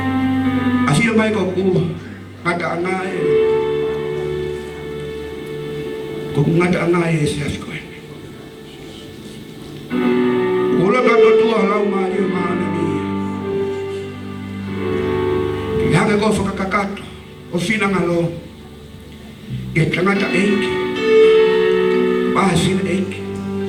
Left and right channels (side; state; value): both; identical; correlation 1.00